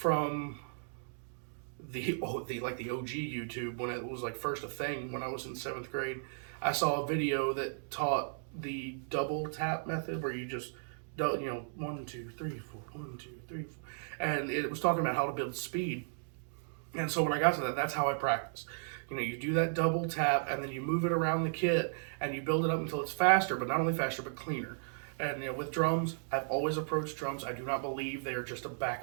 the OG YouTube when it was like first a thing when I was in 7th grade. I saw a video that taught the double tap method where you just 1 2 3 4 1 2 3 4, and it was talking about how to build speed. And so when I got to that, that's how I practice. You do that double tap, and then you move it around the kit, and you build it up until it's faster, but not only faster, but cleaner. And with drums, I've always approached drums. I do not believe they are just a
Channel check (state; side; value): silent; left; digital silence